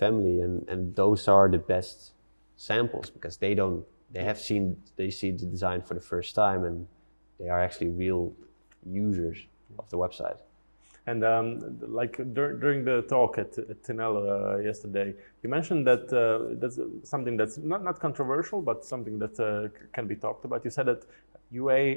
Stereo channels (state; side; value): inverted; both; correlation -1.00